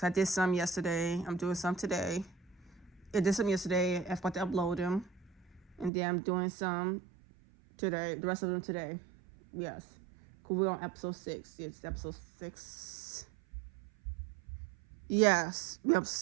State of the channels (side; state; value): left; drops out; at 5.9 s